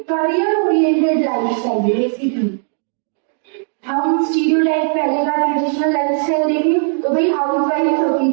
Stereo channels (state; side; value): silent; left; 67 dB below the other